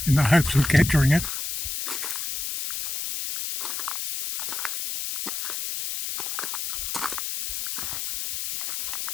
in the hopes of capturing it.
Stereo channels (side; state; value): left; noise; hiss, 3 dB below the sound